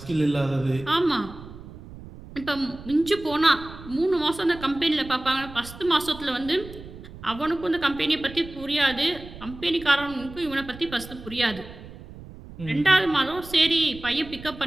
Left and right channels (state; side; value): noise; right; rumble, 15 dB below the sound